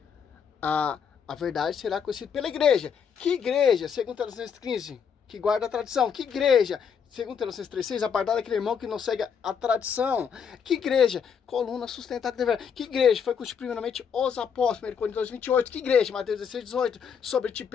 A verdade será conhecida pela igreja. Que igreja? Segundo Tessalonicenses 15, que guarda a tradição. Que igreja? Segundo Tessalonicenses 3:6, apartar daquele irmão que não segue a tradição. Que igreja? Coluna sustentada de verdade. Que igreja? Foi constituída primeiramente os apóstolos, 1 Coríntios 2:28. Que igreja? Mateus 16:18. Sobre ti,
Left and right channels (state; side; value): quieter; right; 7.0 dB